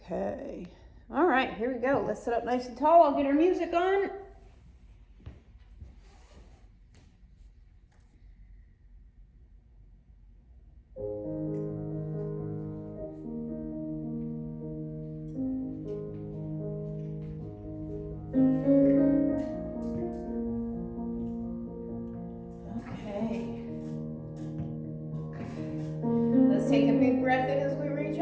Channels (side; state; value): both; identical; correlation 1.00